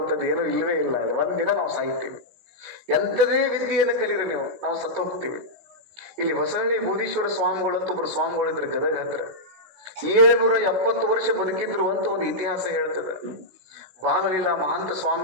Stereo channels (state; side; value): late; left; 16 ms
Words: ಏನೂ ಇಲ್ವೇ ಇಲ್ಲ. ಅಲ್ಲಿ ಒಂದಿನ ನಾವು ಸಾಯ್ತೀವಿ. ಎಂಥದೇ ವಿದ್ಯೆಯನ್ನು ಕಲೀರಿ ನೀವು, ನಾವು ಸತ್ತು ಹೋಗ್ತೀವಿ. ಇಲ್ಲಿ ಹೊಸಹಳ್ಳಿ ಬೂದೀಶ್ವರ ಸ್ವಾಮಿಗಳು ಅಂತ ಒಬ್ರು ಸ್ವಾಮಿಗಳಿದ್ರು ಗದಗ ಹತ್ರ. 770 ವರ್ಷ ಬದುಕಿದ್ರು ಅಂತ ಒಂದು ಇತಿಹಾಸ ಹೇಳ್ತದೆ. ಬಾಲಲೀಲಾ ಮಹಾಂತ